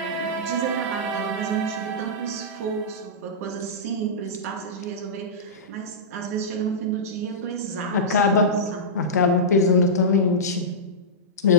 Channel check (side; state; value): both; normal; correlation -0.15